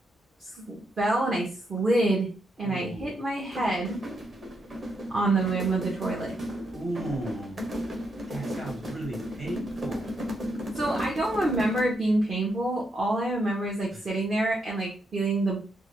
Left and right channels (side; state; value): both; normal; correlation 0.79